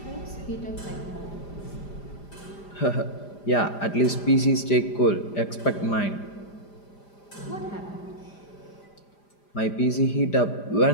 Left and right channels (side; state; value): right; late; 5.0 ms